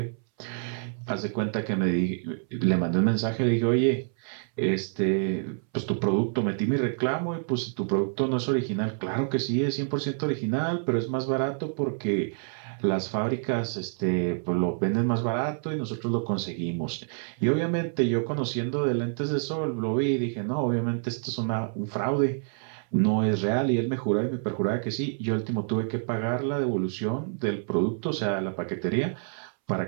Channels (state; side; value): silent; left; 60 dB below the other